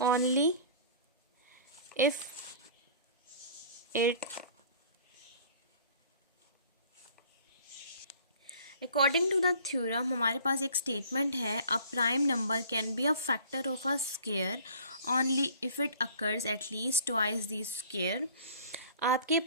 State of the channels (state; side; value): inverted; both; correlation -0.49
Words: only if it according to the theorem हमारे पास एक स्टेटमेंट है, a prime number can be a factor of a square only if it occurs at least twice the square. आपके